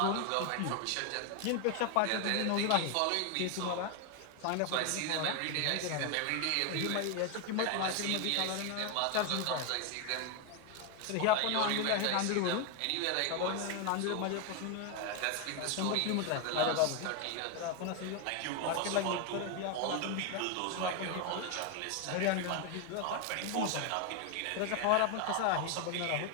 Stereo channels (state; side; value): different; both; correlation 0.01